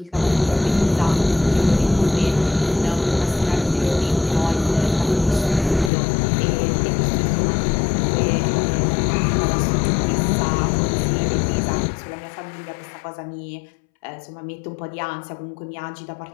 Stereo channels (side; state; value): right; drops out; at 5.9 s